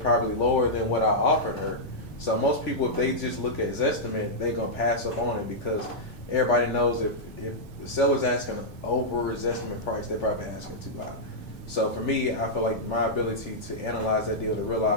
lower than what I offered her. So most people, if they just look at Zestimate, they're going to pass up on it because everybody knows if the seller's asking over Zestimate price, they're probably asking too high. So for me, I feel like my ability to analyze that deal, to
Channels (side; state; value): right; late; 1.8 ms